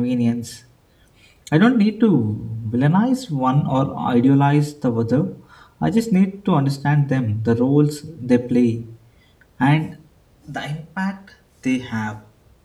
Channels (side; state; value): both; identical; correlation 1.00